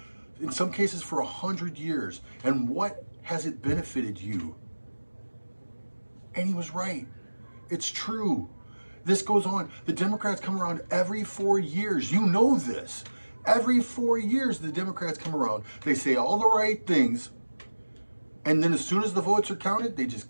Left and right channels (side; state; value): both; inverted; correlation -1.00